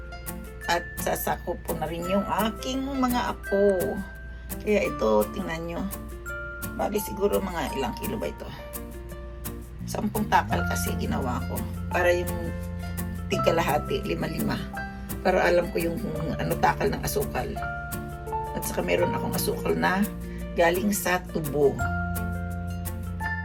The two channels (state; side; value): identical; both; correlation 1.00